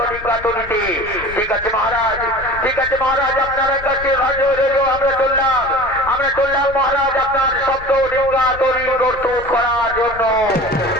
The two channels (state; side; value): noise; left; rumble, 15 dB below the sound